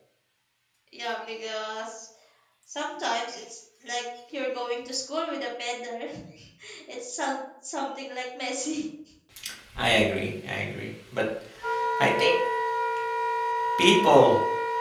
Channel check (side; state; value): both; identical; correlation 1.00